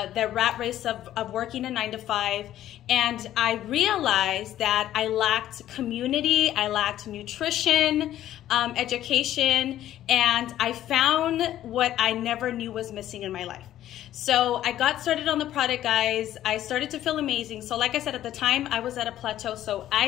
rat race of working a 9 to 5. And I realized that I lacked community, I lacked nutrition, education, and I found what I never knew was missing in my life. So I got started on the product, guys. I started to feel amazing. So like I said, at the time, I was at a plateau. So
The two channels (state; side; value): quieter; right; 12.6 dB